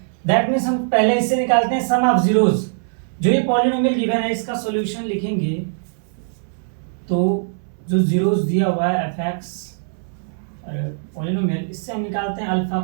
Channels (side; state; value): left; silent; 65 dB below the other